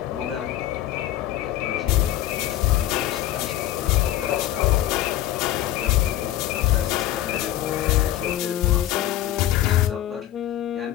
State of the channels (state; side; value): quieter; right; 13.3 dB